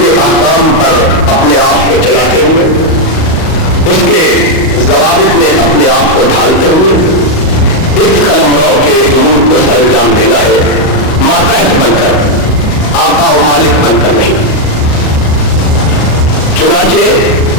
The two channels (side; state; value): right; late; 38 ms